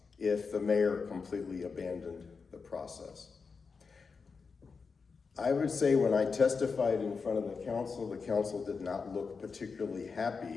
if the mayor completely abandoned the process. I would say when I testified in front of the council did not look particularly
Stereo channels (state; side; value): quieter; right; 5.0 dB